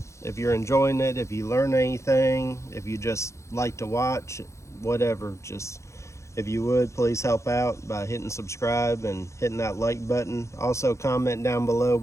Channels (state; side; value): late; right; 0.14 ms